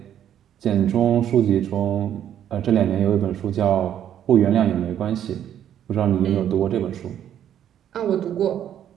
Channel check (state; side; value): quieter; left; 10.3 dB